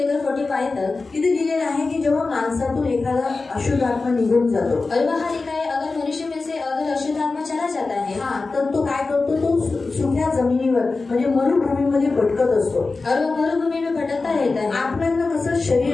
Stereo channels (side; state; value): right; quieter; 3.8 dB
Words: 45 तक तिथे लिहिलेलं आहे की जेव्हा माणसातून एखादा अशुद्ध आत्मा निघून जातो, और वहाँ लिखा है अगर मनुष्य में से अगर अशुद्ध आत्मा चला जाता है, तर तो काय करतो? तो सुक्या जमिनीवर म्हणजे मरुभूमीमध्ये भटकत असतो। और वो मरुभूमि में भटकता रहता है। आत्म्यांना कसं